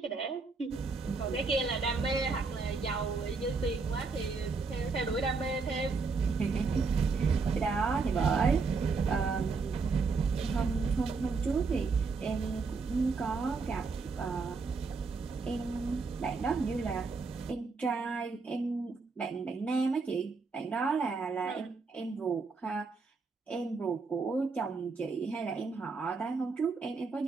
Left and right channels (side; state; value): left; quieter; 4.5 dB